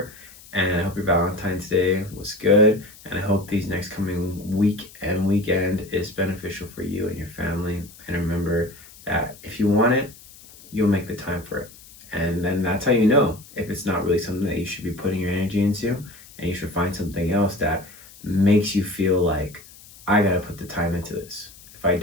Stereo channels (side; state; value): left; noise; hiss, 21 dB below the sound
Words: and I hope your Valentine's Day was good, and I hope these next coming week and weekend is beneficial for you and your family. And remember that if you want it, you'll make the time for it. And then that's how you know if it's not really something that you should be putting your energy into, and you should find something else that makes you feel like, I gotta put the time into this. If I